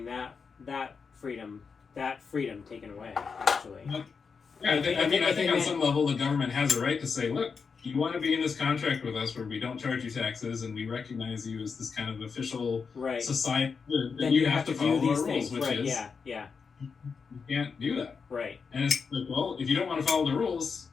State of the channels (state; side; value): quieter; right; 5.5 dB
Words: that freedom taken away. Actually, Yeah, I think on Amen. some level the government has a right to say, look, you want to be in this contract with us where we don't charge you taxes and we recognize you as this kind of official right. society, then Then you have to follow do these our rules, things. which Right. is Yeah. you can't do that. Right. And it's like, well, if you don't want to follow the rules,